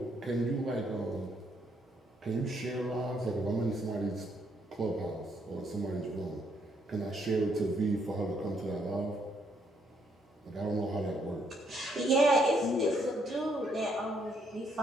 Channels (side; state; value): both; normal; correlation 0.72